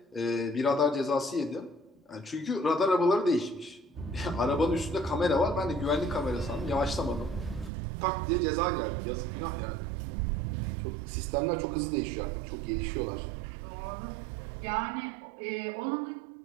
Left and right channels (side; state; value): left; drops out; at 7.7 s